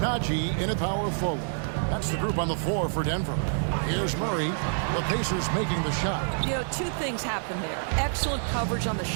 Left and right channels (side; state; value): left; silent; digital silence